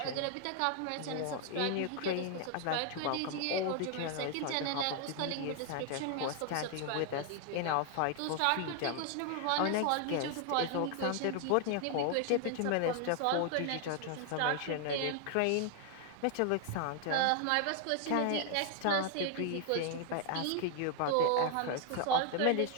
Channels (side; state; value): both; different; correlation 0.00